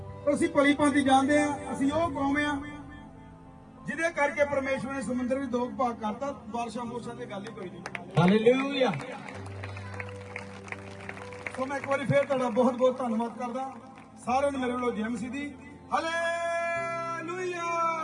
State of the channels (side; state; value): both; identical; correlation 1.00